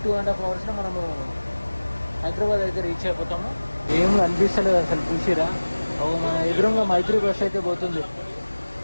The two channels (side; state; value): both; inverted; correlation -1.00